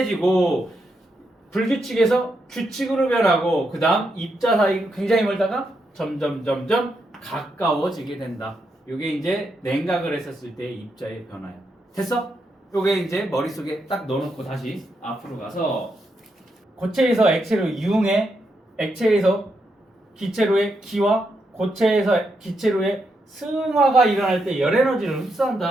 불규칙에서 규칙으로 변하고, 그 다음 입자 사이 굉장히 멀다가 점점 가까워지게 된다. 이게 이제 냉각을 했었을 때의 입자의 변화야. 됐어? 요게 이제 머릿속에 딱 넣어놓고 다시 앞으로 가서 고체에서 액체로 이용해, 액체에서 기체로의 기화, 고체에서 기체로의 승화가 일어날 때 열 에너지를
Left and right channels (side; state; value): both; normal; correlation 0.82